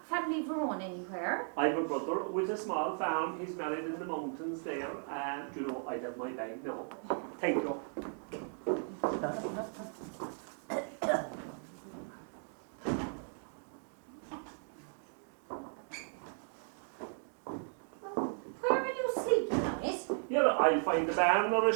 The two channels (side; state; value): left; silent; 54 dB below the other